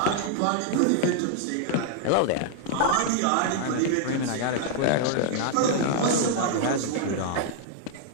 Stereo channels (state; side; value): different; both; correlation -0.01